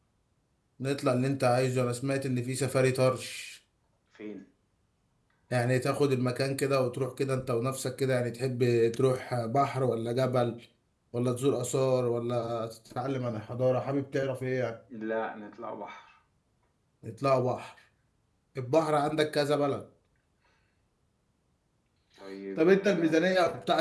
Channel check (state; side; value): identical; both; correlation 1.00